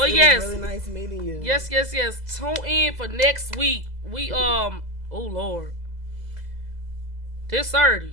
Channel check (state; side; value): late; left; 2.0 ms